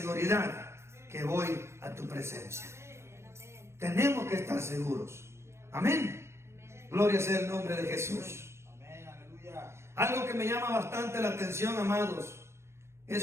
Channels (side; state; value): left; late; 0.13 ms